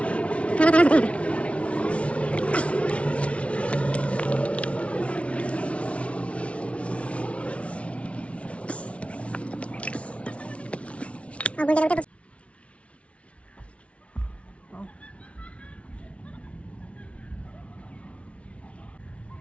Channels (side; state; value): right; late; 0.062 ms